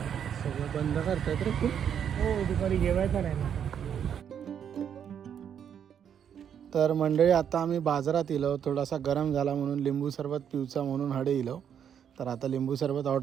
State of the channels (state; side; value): quieter; left; 8.5 dB